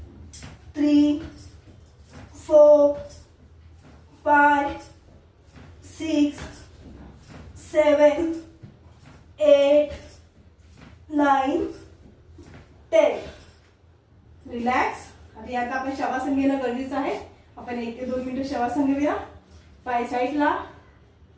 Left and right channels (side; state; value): both; identical; correlation 1.00